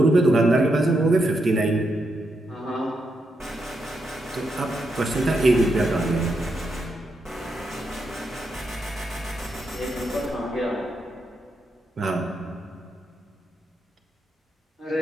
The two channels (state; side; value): normal; both; correlation 0.83